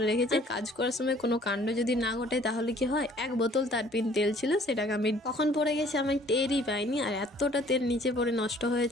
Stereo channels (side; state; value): both; normal; correlation 0.56